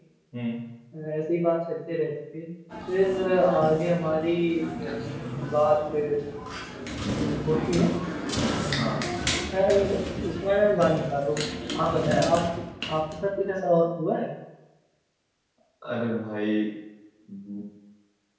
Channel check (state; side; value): identical; both; correlation 1.00